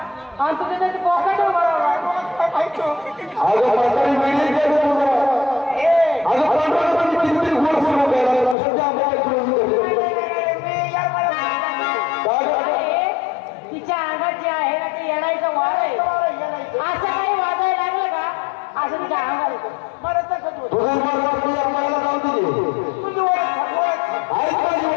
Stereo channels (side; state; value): right; drops out; at 8.6 s